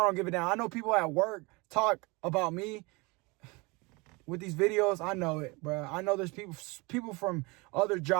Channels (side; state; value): left; quieter; 26.3 dB